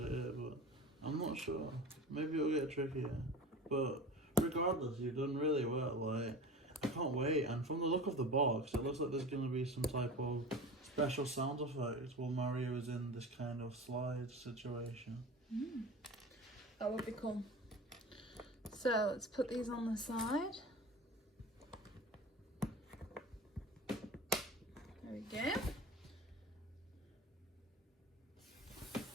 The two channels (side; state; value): both; normal; correlation 0.35